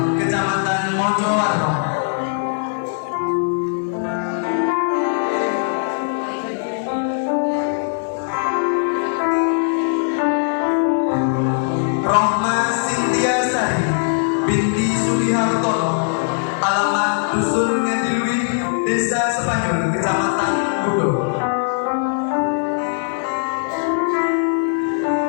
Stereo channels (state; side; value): silent; right; 66 dB below the other